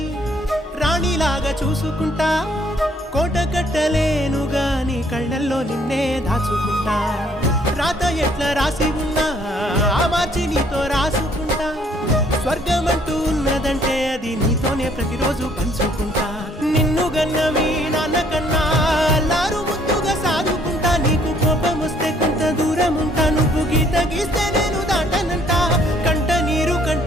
రాణిలాగా చూసుకుంటా, కోట కట్టలేను గాని కళ్ళల్లో నిన్నే దాచుకుంటా. రాత ఎట్లా రాసి ఉన్నా ఆ మార్చి నీతో రాసుకుంటా. స్వర్గమంటూ ఉన్నదంటే అది నీతోనే ప్రతిరోజు పంచుకుంటా. నిన్ను గన్న మీ నాన్న కన్నా అల్లారు ముద్దుగా సాదుకుంటా. నీకు కోపం వస్తే కొంత దూరం ఉంటా, నువ్వు గీత గీస్తే నేను దాటనంటా. కంట నీరు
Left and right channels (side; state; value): both; normal; correlation 0.63